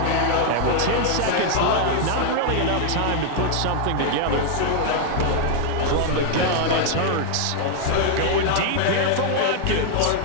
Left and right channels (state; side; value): different; both; correlation 0.00